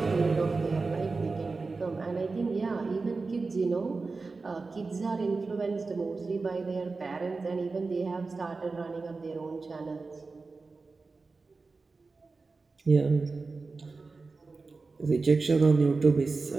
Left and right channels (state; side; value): quieter; left; 4.0 dB